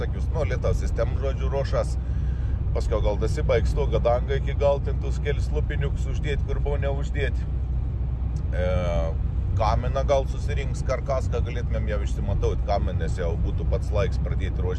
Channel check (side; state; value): both; identical; correlation 1.00